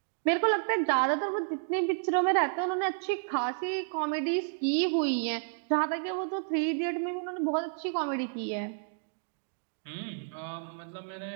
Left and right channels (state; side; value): silent; left; digital silence